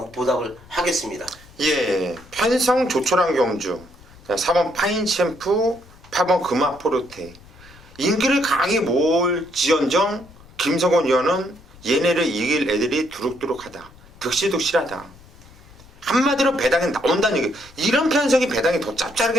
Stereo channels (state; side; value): noise; left; rumble, 23 dB below the sound